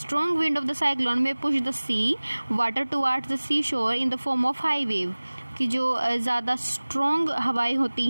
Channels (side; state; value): both; inverted; correlation -1.00